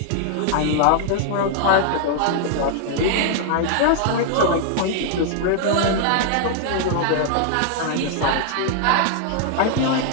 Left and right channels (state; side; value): different; both; correlation 0.00